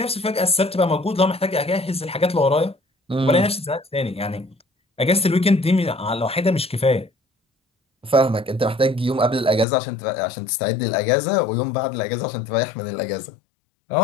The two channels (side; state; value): right; drops out; at 9.7 s